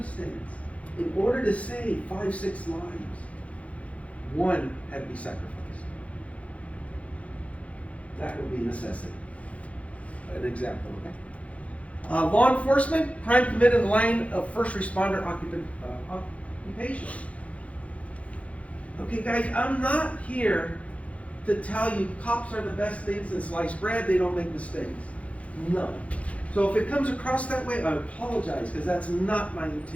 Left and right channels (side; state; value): right; late; 0.065 ms